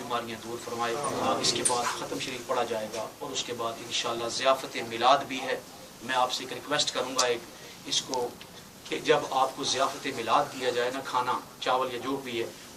دور فرمائے۔ اس کے بعد ختم شریف پڑھا جائے گا، اور اس کے بعد انشاءاللہ ضیافت میلاد بھی ہے۔ میں آپ سے ایک ریکویسٹ کروں گا، اس کو کہ جب آپ کو ضیافت میلاد دیا جائے نا، کھانا چاول یا جو بھی ہے،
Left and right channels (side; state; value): both; identical; correlation 1.00